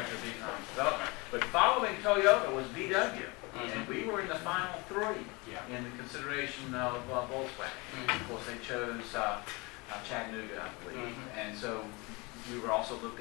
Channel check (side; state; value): right; quieter; 26.7 dB